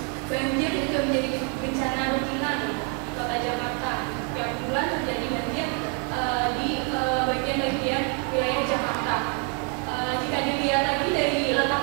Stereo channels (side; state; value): left; quieter; 33.0 dB